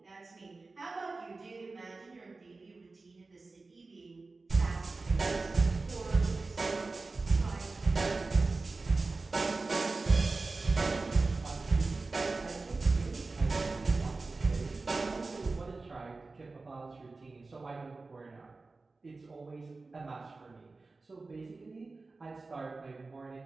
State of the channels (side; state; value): left; quieter; 3.7 dB